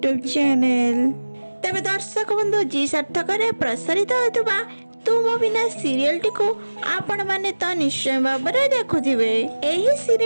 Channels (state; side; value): inverted; both; correlation -1.00